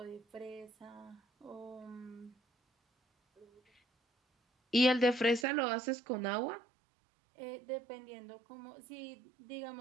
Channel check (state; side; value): drops out; left; at 5.5 s